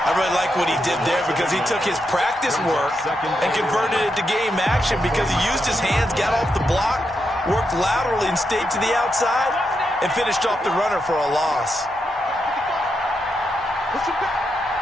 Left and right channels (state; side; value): normal; both; correlation 0.84